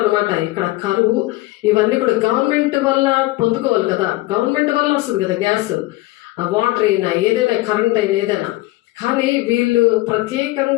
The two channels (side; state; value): right; quieter; 19.2 dB